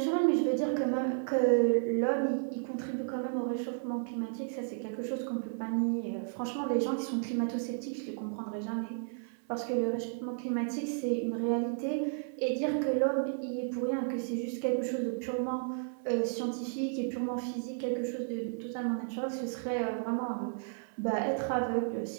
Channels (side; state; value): left; silent; 56 dB below the other